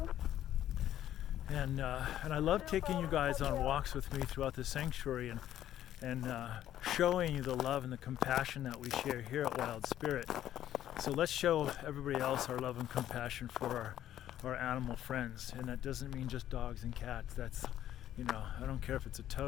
And I love taking you guys on walks with me throughout the sanctuary and showing you the love and the compassion that we share here at Wild Spirit. So let's show everybody else our love and compassion for our animal friends. And that doesn't mean just dogs and cats. That's, I don't care if it's a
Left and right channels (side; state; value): right; quieter; 11.9 dB